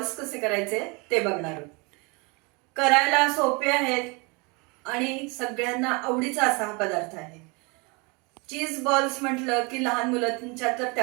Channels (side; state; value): left; quieter; 29.2 dB